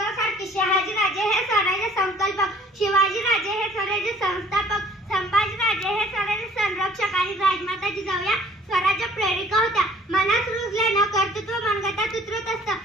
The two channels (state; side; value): normal; both; correlation 0.54